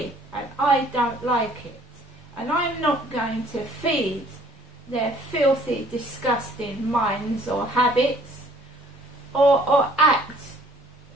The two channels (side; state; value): both; normal; correlation 0.57